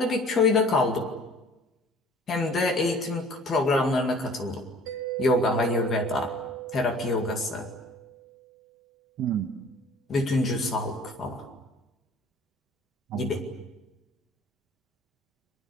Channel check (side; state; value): both; normal; correlation 0.50